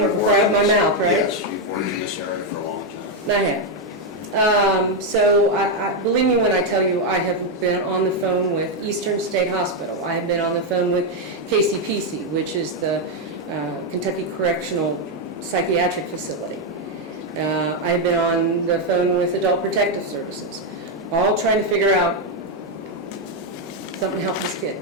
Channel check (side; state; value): both; normal; correlation 0.03